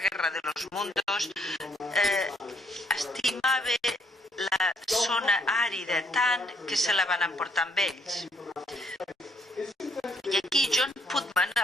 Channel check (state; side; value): normal; both; correlation 0.70